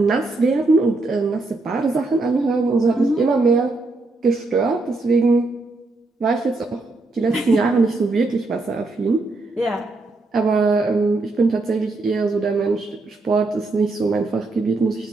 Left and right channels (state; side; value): quieter; left; 3.2 dB